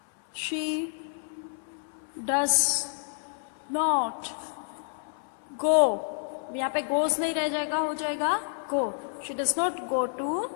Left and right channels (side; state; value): right; silent; 59 dB below the other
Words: शी डज नॉट गो. यहाँ पे गोज नहीं रह जाएगा, हो जाएगा go. She does not go to